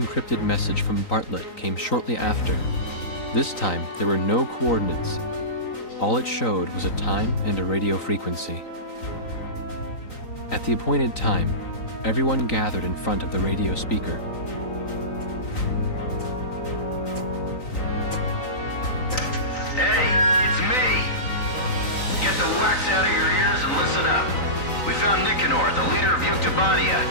message from Bartlett came shortly after. This time, there were no coordinates. All it showed was a time and a radio frequency. At the appointed time, everyone gathered in front of the radio speaker. Hey, it's me! Get the wax out of your ears and listen up. We found Nicanor, the leader of Yuktobania,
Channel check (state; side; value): late; right; 3.9 ms